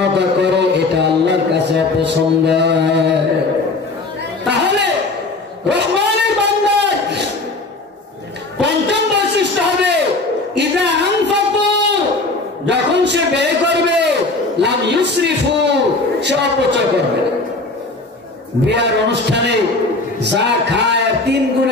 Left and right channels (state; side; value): quieter; right; 3.3 dB